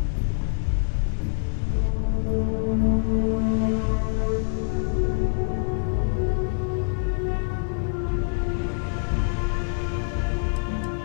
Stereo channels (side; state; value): right; silent; digital silence